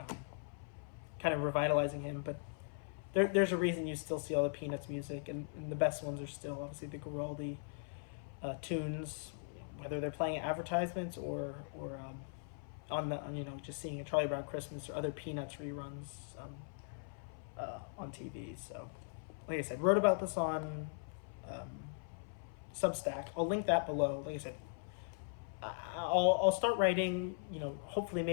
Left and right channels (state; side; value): silent; right; 51 dB below the other